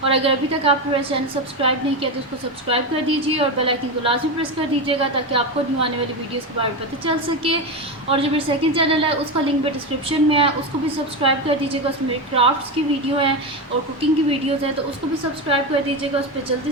और अगर अभी तक आपने मेरा चैनल सब्सक्राइब नहीं किया तो उसको सब्सक्राइब कर दीजिए और बेल आइकन को लाजमी प्रेस कर दीजिएगा ताकि आपको न्यू आने वाली वीडियोज़ के बारे में पता चल सके। और जो मेरा सेकंड चैनल है उसका लिंक भी डिस्क्रिप्शन में है, उसको भी सब्सक्राइब कर दीजिएगा। उसमें मेरे क्राफ्ट्स की वीडियो है और कुकिंग की वीडियोज़ हैं, तो उसको भी सब्सक्राइब कर दीजिएगा। उस पर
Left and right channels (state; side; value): normal; both; correlation 0.15